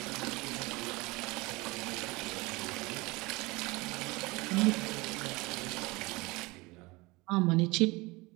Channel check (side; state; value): left; quieter; 23.5 dB